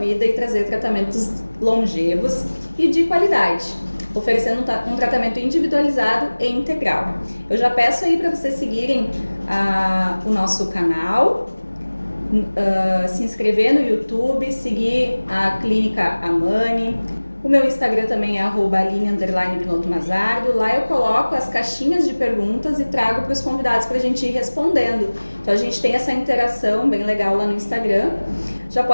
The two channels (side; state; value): both; inverted; correlation -1.00